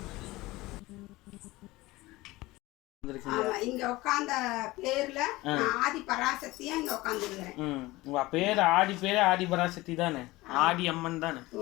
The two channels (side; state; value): right; quieter; 19.8 dB